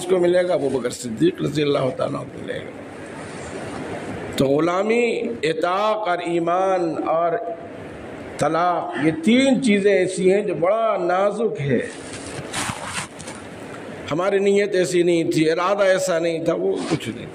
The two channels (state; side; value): identical; both; correlation 1.00